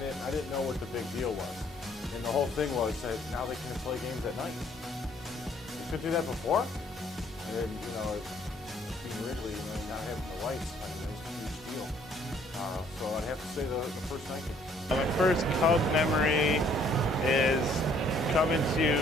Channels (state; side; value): normal; both; correlation 0.62